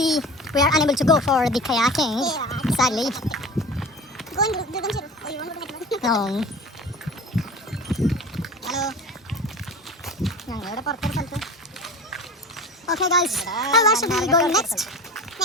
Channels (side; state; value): both; normal; correlation 0.35